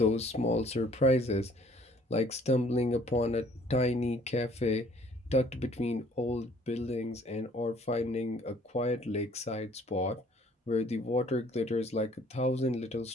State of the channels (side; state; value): both; normal; correlation 0.57